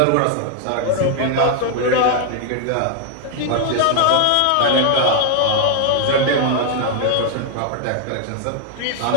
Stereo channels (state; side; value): different; both; correlation 0.00